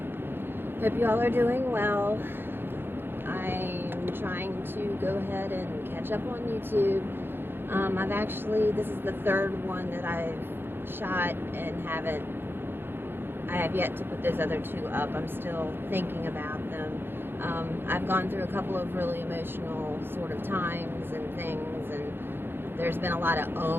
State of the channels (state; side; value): late; left; 0.10 ms